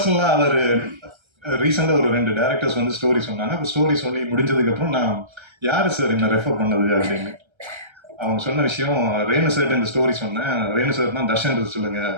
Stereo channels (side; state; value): left; late; 1.3 ms